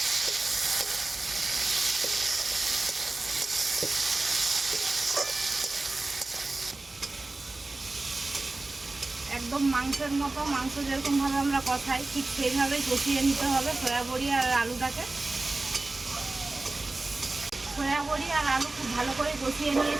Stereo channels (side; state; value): left; quieter; 3.2 dB